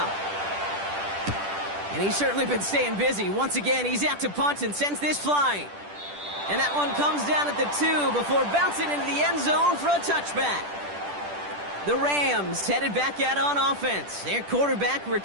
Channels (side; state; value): left; late; 10 ms